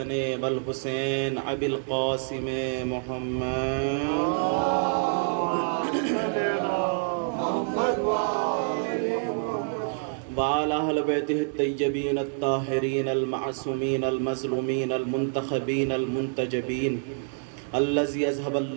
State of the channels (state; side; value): silent; left; digital silence